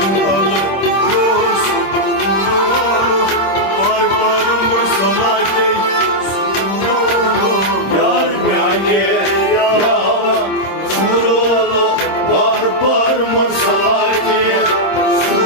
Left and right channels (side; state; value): right; late; 26 ms